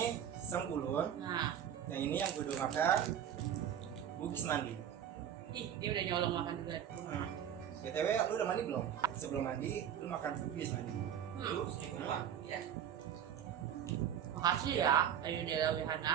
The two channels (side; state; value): left; quieter; 9.5 dB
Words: sengkulun, Nah, yang ini yang gue udah makan bugis mandi. dia udah nyolong makan juga. BTW, lu udah mandi belum? Sebelum mandi, lu makan bugis mandi. Lu sedikit Ya. Makasih ya, Ayu Dela